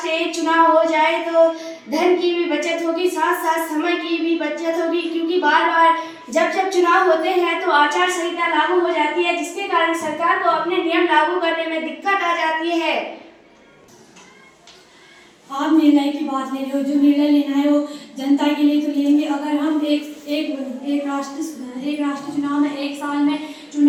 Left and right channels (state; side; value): identical; both; correlation 1.00